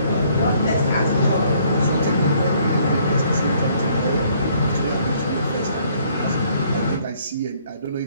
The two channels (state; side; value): inverted; both; correlation -0.64